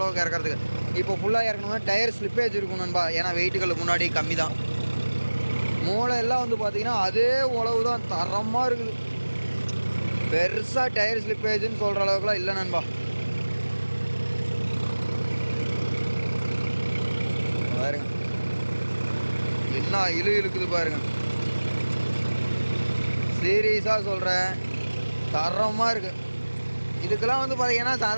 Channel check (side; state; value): both; inverted; correlation -1.00